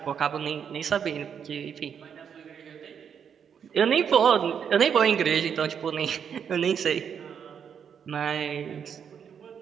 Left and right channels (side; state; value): left; quieter; 7.6 dB